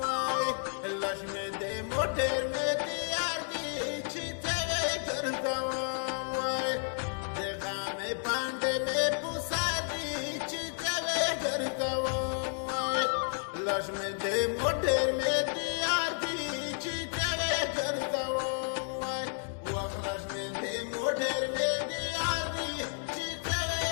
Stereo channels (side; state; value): right; silent; 57 dB below the other